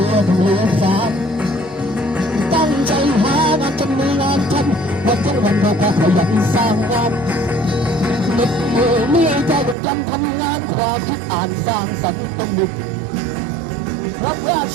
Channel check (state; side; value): drops out; left; at 9.8 s